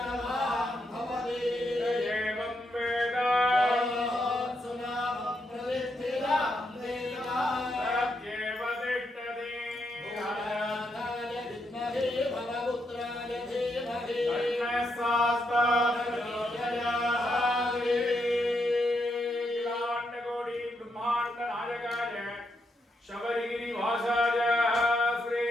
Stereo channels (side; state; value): both; normal; correlation 0.81